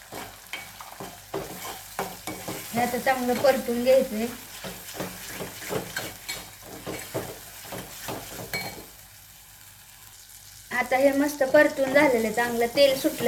हे आता चांगलं परतून घ्यायचंय. आता हे मस्त परतून झालेलं, चांगलं तेल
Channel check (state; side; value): identical; both; correlation 1.00